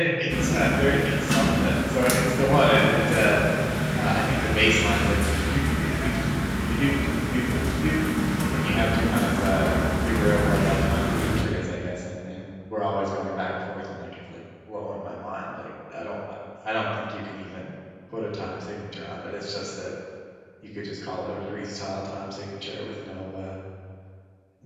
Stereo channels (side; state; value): both; identical; correlation 1.00